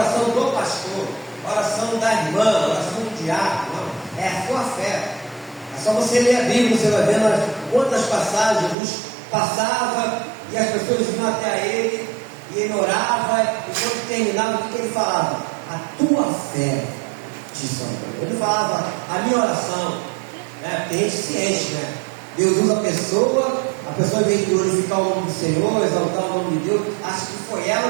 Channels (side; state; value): left; drops out; at 8.8 s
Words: do pastor, a oração da irmã, a oração do diácono, não. É a sua fé. É só você ler a Bíblia, você vai vendo quantas passagens Jesus passava e as pessoas iam até ele e ele orava, e quando terminava, o que ele falava? A tua fé te salvou. Ele falava a minha oração, né? Tem gente ciente, né? Deus usa a pessoa em vez de glorificar o nome do Senhor, exaltar o nome de Deus, acha que foi